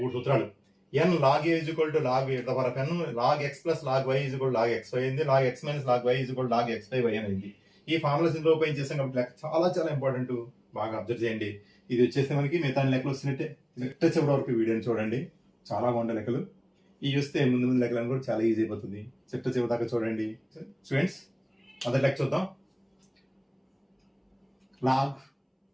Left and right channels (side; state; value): both; identical; correlation 1.00